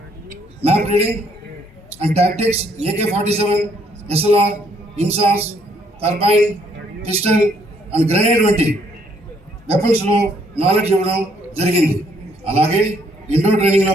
map reading and tactics, AK-47, SLR, INSAS, carbine, pistol and grenade వంటి వెపన్స్లో నాలెడ్జ్ ఇవ్వడం జరిగింది. అలాగే ఇండోర్ ట్రైనింగ్లో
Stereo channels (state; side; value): normal; both; correlation 0.68